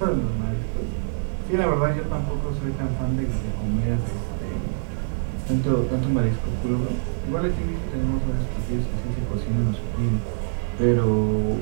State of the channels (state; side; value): silent; left; digital silence